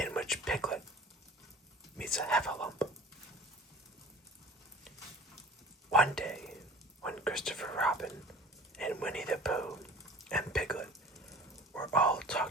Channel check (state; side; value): normal; both; correlation 0.43